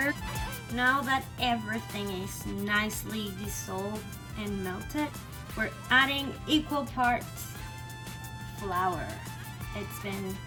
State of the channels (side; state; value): both; identical; correlation 1.00